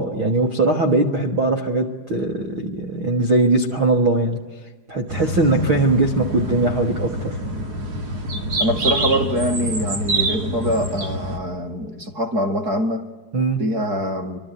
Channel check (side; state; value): left; late; 4.9 ms